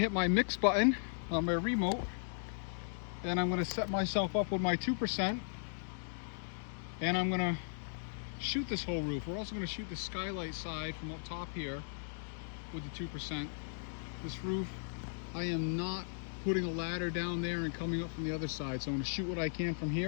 my mix button on my remote, and I'm gonna set myself up with my 2%, and I'm gonna shoot this whole roof. We're also gonna shoot the skylight side from up top here with the 2%. This roof, I am not putting a ladder down there and coming up from the other side. So I'm gonna shoot what I can from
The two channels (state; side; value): silent; right; digital silence